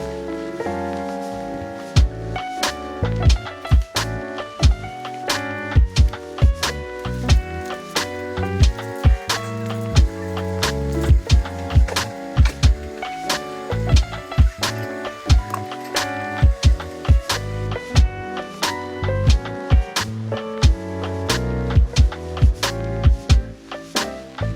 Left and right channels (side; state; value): both; identical; correlation 1.00